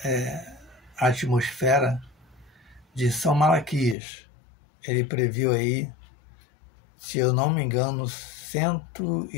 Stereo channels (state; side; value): drops out; right; at 4.0 s